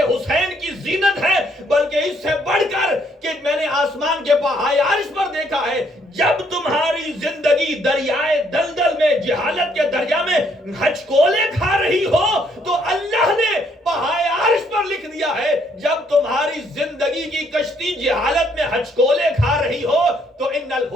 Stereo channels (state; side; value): normal; both; correlation 0.69